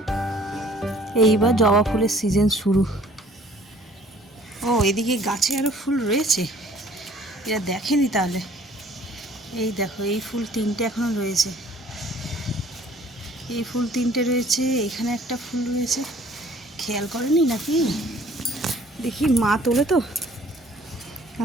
এইবার জবা ফুলের সিজন শুরু। ও এদিকে গাছে আরও ফুল রয়েছে, এরা দেখেনি তাহলে। এই দেখো, এই ফুল 3টে এখনো রয়েছে, এই ফুল 3টে রয়েছে, এখানে একটা ফুল রয়েছে। খেয়াল করেনি নাকি? দেখি, মা তোলে তো,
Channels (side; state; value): both; normal; correlation 0.55